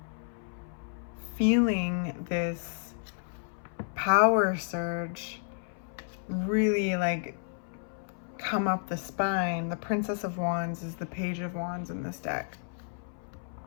feeling this power surge really like come up the spine. The Princess of Wands is the Page of Wands in this deck.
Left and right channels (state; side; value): silent; right; 57 dB below the other